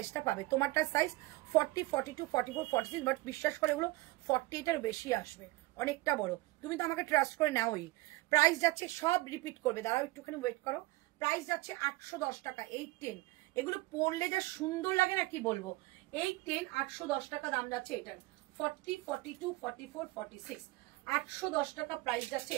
পাবে। তোমারটা সাইজ 40, 42, 44, 46, বাট বিশ্বাস করে এগুলো 40 এটার বেশি আসবে, অনেকটা বড়। তুমি তো আমাকে ট্রাস্ট করে নাওই। প্রাইস যাচ্ছে, সব রিপিট করবে, দাঁড়াও একটুখানি ওয়েট করো। প্রাইস যাচ্ছে 810 টাকা, 810। এগুলো পরলে যা সুন্দর লাগে না কি বলবো। 810 810 টাকা দাম যাচ্ছে এটার। 40, 42, 44, 46, 810 টাকা প্রাইস যাচ্ছে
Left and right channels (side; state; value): left; quieter; 20.1 dB